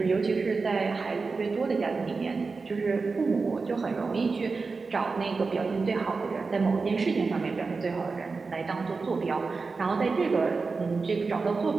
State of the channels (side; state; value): left; quieter; 4.3 dB